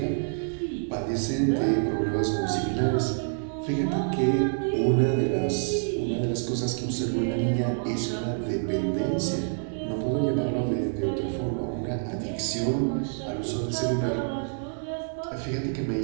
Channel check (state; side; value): silent; left; digital silence